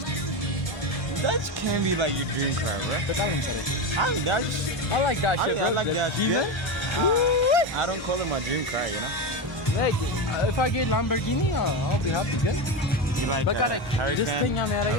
That can be like your dream car, bro. በጣም ነው የሚሰራው That's I like that shit bro I like that. Demon? I don't call it my dream car, you know. Like, if I get Lamborghini, I'll be happy good. You like But gotta- Hurricane, this thing I'm at,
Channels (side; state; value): both; normal; correlation 0.16